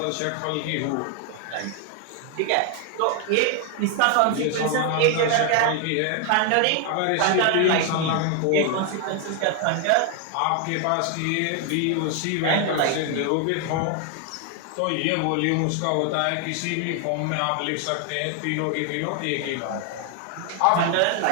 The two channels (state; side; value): different; both; correlation 0.00